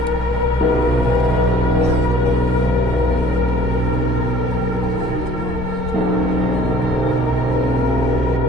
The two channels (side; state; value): both; normal; correlation 0.52